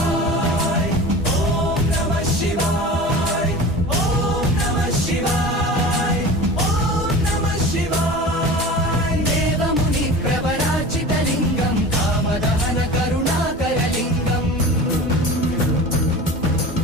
ॐ नमः शिवाय ॐ नमः शिवाय ॐ नमः शिवाय देवमुनि प्रवरार्चितलिङ्गं कामदहन करुणाकरलिङ्गम्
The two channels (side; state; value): both; normal; correlation 0.35